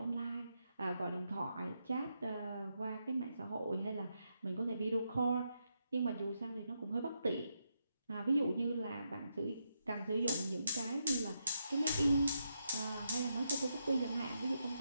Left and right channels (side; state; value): both; inverted; correlation -0.82